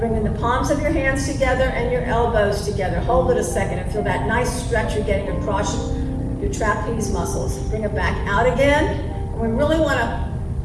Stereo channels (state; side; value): identical; both; correlation 1.00